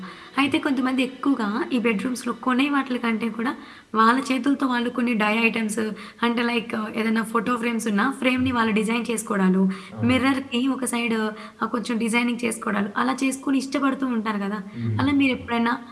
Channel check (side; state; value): both; identical; correlation 1.00